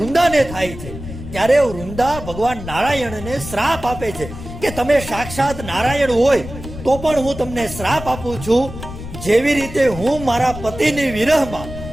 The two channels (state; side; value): noise; left; rumble, 11 dB below the sound